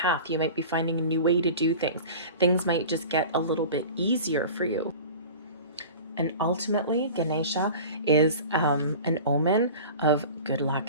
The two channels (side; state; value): both; inverted; correlation -0.37